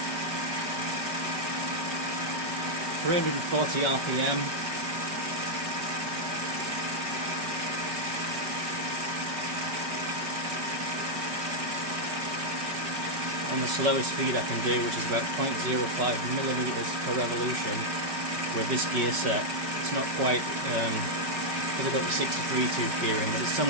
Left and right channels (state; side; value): late; left; 5.2 ms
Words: 340 RPM. On the slowest speed I can do, which is about 0.05 millimeters per revolution with this gear set. It's not quite, because I've got the 63 tooth gear in, but it's